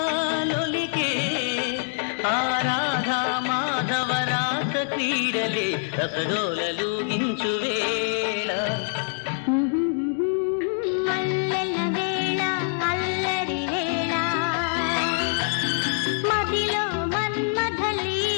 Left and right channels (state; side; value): silent; right; digital silence